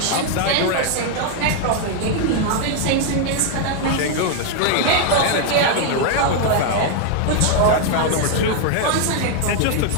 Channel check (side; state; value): both; different; correlation 0.00